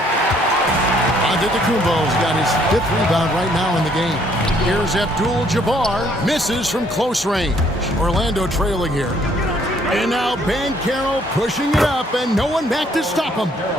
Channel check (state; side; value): normal; both; correlation 0.65